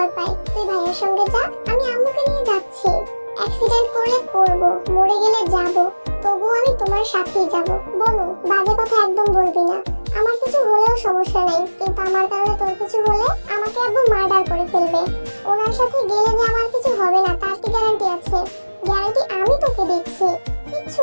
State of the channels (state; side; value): inverted; both; correlation -1.00